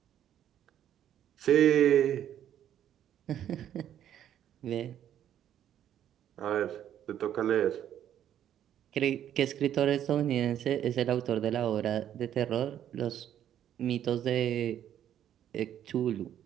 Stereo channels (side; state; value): left; quieter; 10.5 dB